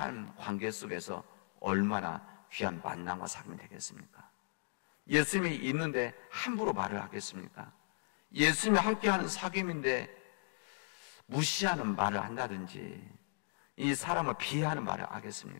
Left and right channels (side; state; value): right; silent; digital silence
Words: 관계 속에서 얼마나 귀한 만남과 사귐이 되겠습니까? 예수님이 있는데 함부로 말을 하겠습니까? 예수님이 함께하는 사귐인데 무시하는 말을 한다든지 이 사람을 비하하는 말을